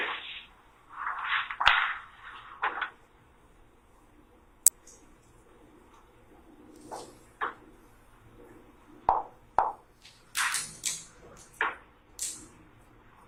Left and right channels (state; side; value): identical; both; correlation 1.00